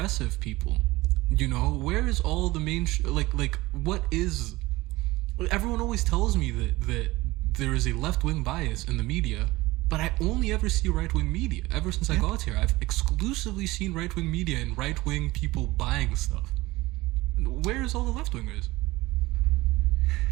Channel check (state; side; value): quieter; left; 19.9 dB